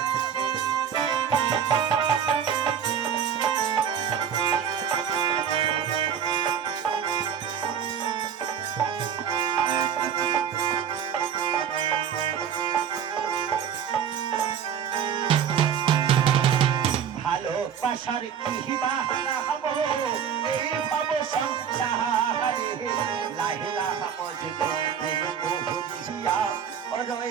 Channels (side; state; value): left; quieter; 8.1 dB